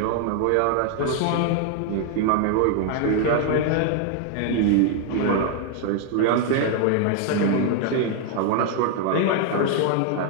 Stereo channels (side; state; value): both; different; correlation 0.00